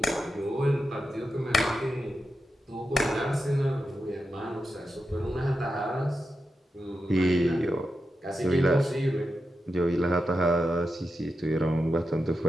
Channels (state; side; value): normal; both; correlation 0.89